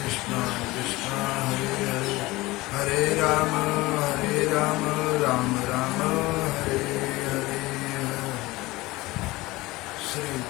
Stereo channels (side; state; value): right; quieter; 20.4 dB